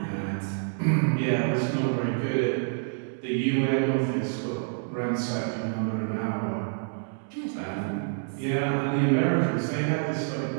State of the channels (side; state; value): left; silent; 60 dB below the other